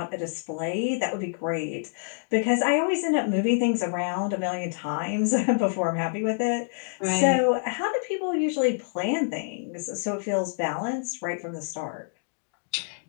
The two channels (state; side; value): silent; right; digital silence